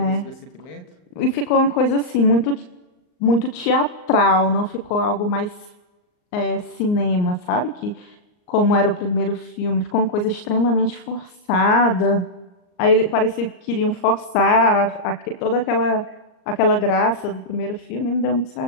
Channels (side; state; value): right; late; 39 ms